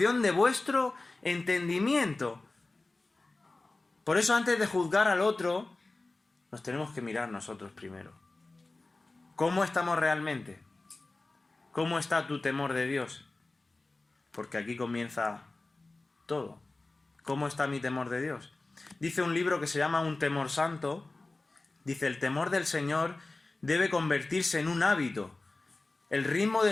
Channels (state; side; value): quieter; right; 3.2 dB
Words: de vuestro entendimiento. Por eso antes de juzgar al otro, nos tenemos que mirar nosotros primero. ¿Cómo estamos realmente? ¿Cómo está tu temor de Dios? Porque aquí comienza todo. ¿Cómo está mi temor de Dios? Dice un libro que se llama Un temor santo. Dice, el temor del Señor debe convertirse en un hábito, el ritmo de